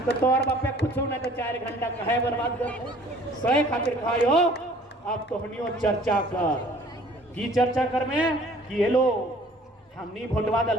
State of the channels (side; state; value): both; normal; correlation 0.53